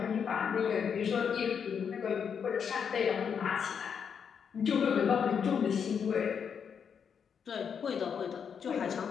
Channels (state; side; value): quieter; right; 7.1 dB